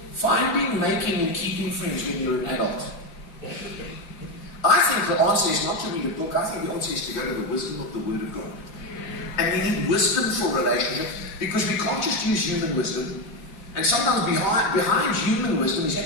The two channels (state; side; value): late; right; 4.8 ms